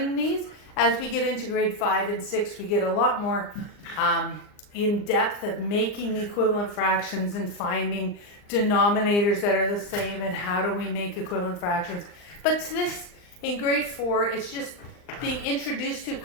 these. As we get into grade 5 and 6, we get a lot more in depth of making equivalent fractions and finding denominators that are the same and how do we make equivalent fractions. But to this, in grade 4, it's just being introduced to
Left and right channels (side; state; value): right; late; 39 ms